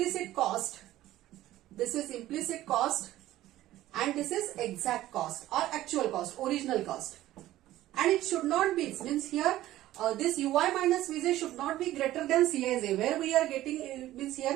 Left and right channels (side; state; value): left; quieter; 14.8 dB